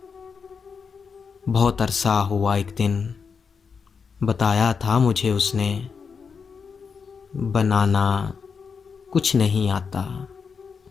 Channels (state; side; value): quieter; right; 5.8 dB